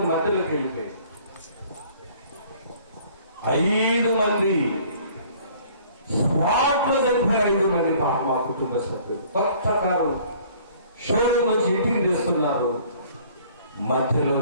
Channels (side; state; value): both; inverted; correlation -0.55